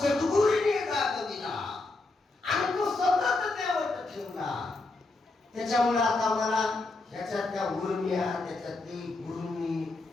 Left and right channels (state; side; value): quieter; right; 3.2 dB